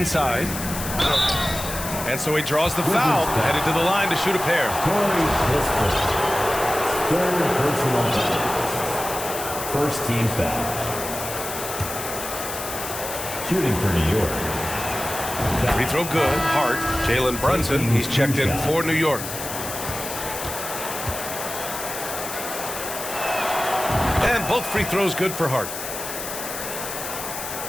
And so he draws the foul, headed to the line to shoot a pair. Third personal foul. First team foul. Shooting for New York. Free throw good. Hart. Jalen Brunson. He's checked in for New York. And both free throws good for Hart.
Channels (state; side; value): noise; left; hiss, 7 dB below the sound